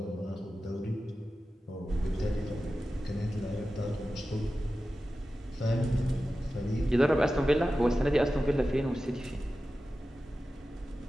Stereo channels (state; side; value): normal; both; correlation 0.94